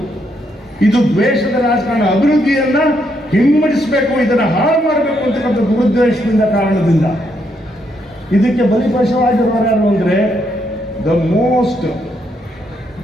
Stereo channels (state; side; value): normal; both; correlation 0.76